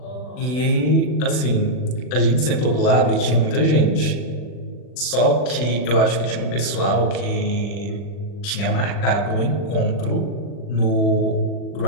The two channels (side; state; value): right; late; 40 ms